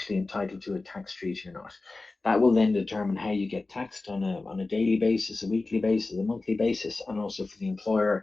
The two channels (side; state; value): right; quieter; 3.4 dB